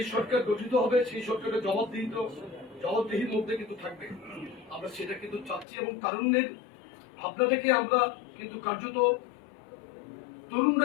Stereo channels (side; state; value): right; drops out; at 5.7 s